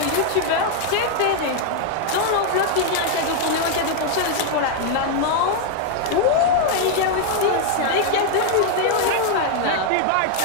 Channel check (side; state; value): both; different; correlation 0.00